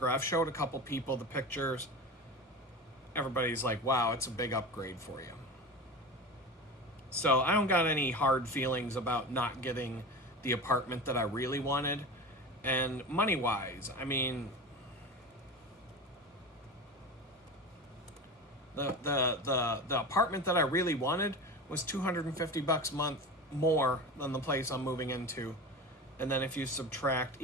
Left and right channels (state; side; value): normal; both; correlation 0.29